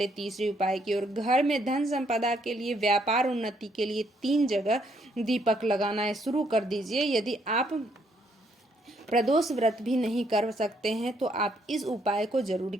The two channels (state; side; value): normal; both; correlation 0.71